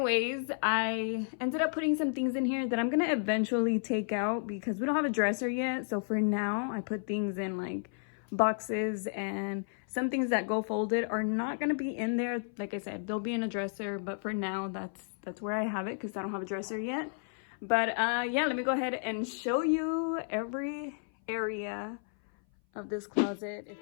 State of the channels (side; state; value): right; silent; 56 dB below the other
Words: I ended up putting some things in here that I'm gonna eventually take out because we don't have a dresser yet. So for now, I put things in like boxes, and some things that go folded are not going to be in there. Like I said, they'll be in a dresser, but for now that's where I have it because I don't have a dresser yet. But yeah, let me go ahead and show you every area of this closet.